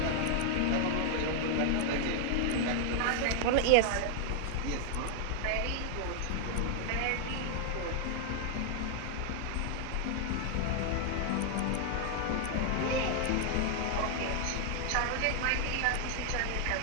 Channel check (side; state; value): both; different; correlation 0.00